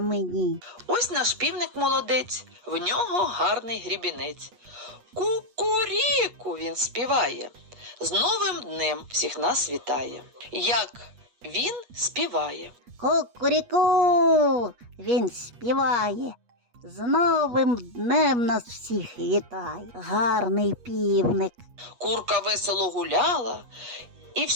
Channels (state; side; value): late; left; 8.3 ms